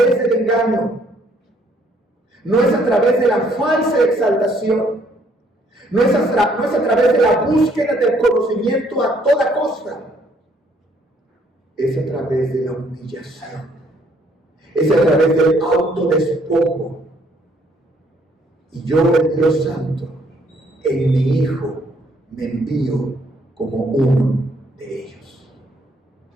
del engaño, no es a través de la falsa exaltación, no es a través de la búsqueda del conocimiento a toda costa, es a través de la humillación, es a través del autodespojo. Y yo, el Dios Santo, en mi Hijo me envío como uno de ellos,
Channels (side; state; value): both; normal; correlation 0.66